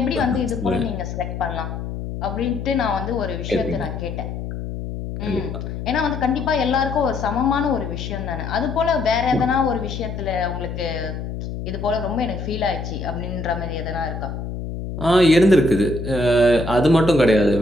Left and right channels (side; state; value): left; noise; hum, 6 dB below the sound